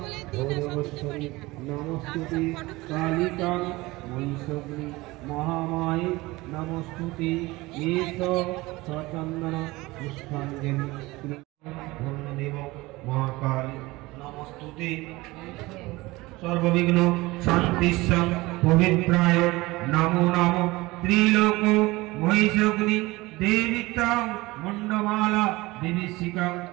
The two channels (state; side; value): quieter; left; 20.9 dB